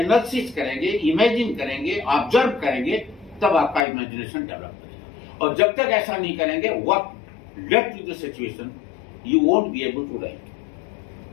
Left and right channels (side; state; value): right; drops out; at 3.9 s